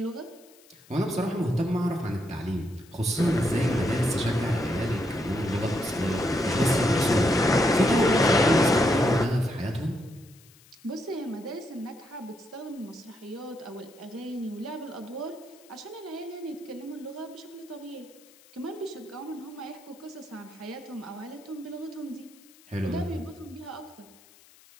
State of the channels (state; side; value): noise; left; hiss, 26 dB below the sound